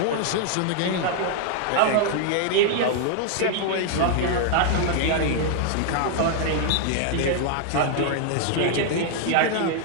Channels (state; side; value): different; both; correlation 0.00